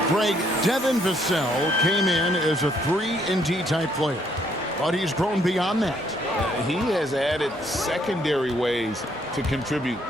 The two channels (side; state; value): both; normal; correlation 0.68